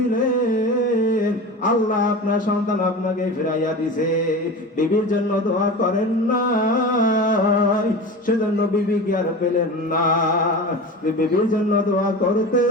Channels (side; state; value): both; normal; correlation 0.31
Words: আল্লাহ আপনার সন্তান আপনাকে ফিরাইয়া দিছে। বিবির জন্য দোয়া করেন না, সেজন্য বিবি কি আর পেলেন না? বিবির জন্য দোয়া